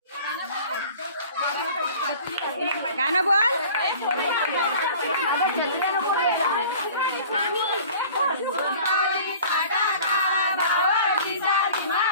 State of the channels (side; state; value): both; inverted; correlation -0.46